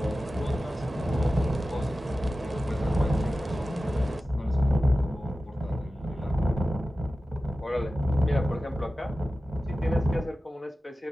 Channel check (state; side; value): normal; both; correlation 0.95